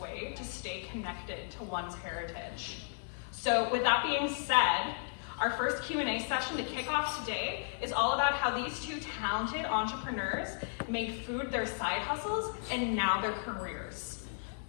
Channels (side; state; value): right; silent; digital silence